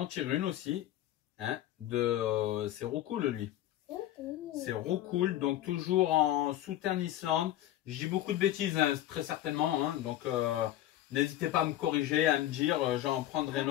tires une aussi. Hein, c'est Roucool lui. C'est Roucool, donc toujours en Southern Island. Je dis beaucoup de bêtises, hein, très certainement. Hein, donc n'hésitez pas à me corriger, à me dire, j'en prendrai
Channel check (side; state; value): right; quieter; 13.5 dB